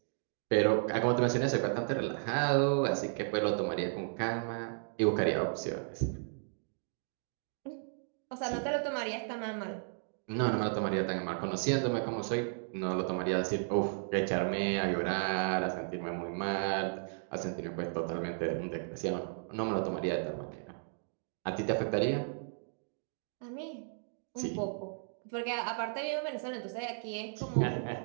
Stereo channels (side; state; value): left; silent; digital silence